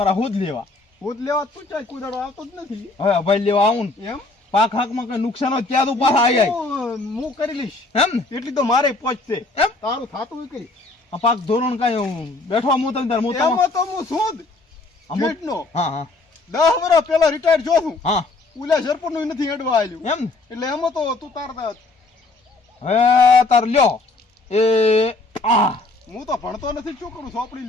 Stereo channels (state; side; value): quieter; right; 3.3 dB